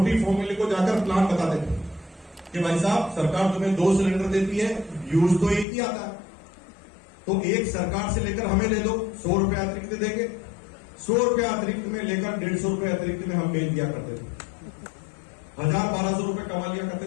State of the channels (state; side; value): drops out; right; at 5.7 s